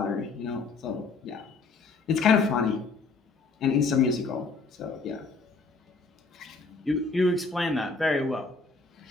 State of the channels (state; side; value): quieter; right; 4.1 dB